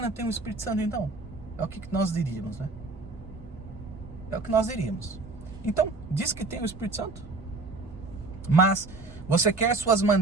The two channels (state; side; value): quieter; left; 3.4 dB